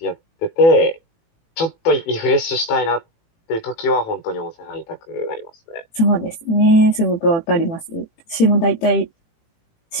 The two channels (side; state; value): right; late; 18 ms